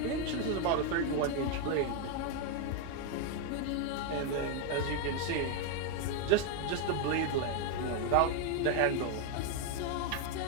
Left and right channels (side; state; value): both; different; correlation 0.01